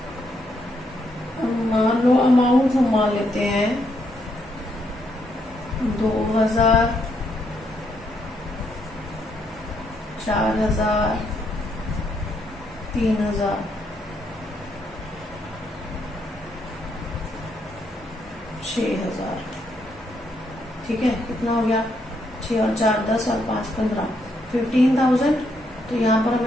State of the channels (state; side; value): normal; both; correlation 0.76